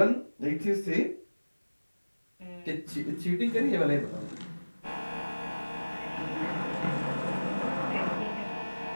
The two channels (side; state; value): both; inverted; correlation -1.00